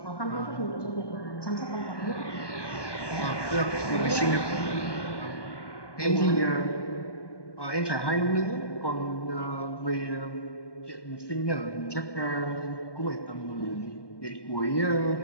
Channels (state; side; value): late; right; 1.2 ms